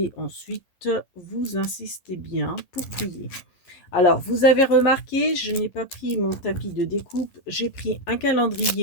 ensuite vous insistez bien pour plier. Alors, vous avez remarqué, je n'ai pas pris mon tapis de découpe, j'ai pris un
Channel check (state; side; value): late; right; 11 ms